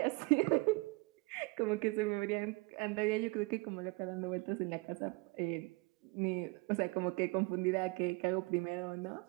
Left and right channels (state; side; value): quieter; left; 27.7 dB